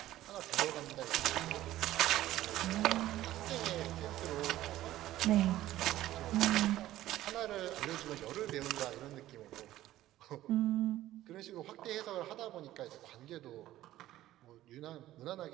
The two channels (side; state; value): left; quieter; 14.5 dB